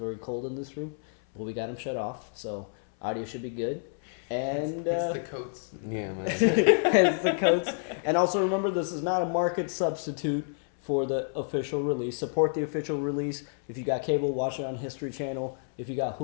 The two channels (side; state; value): right; silent; 59 dB below the other